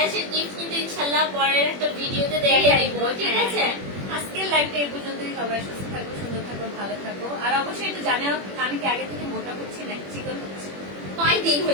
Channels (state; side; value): late; left; 21 ms